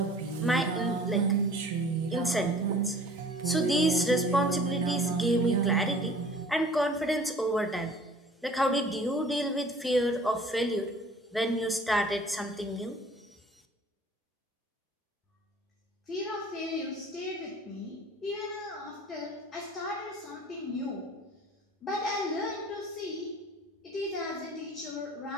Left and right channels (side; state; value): both; normal; correlation 0.48